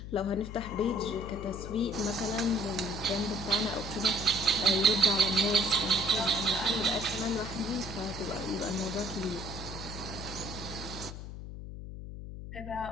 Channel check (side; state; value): left; noise; hum, 9 dB below the sound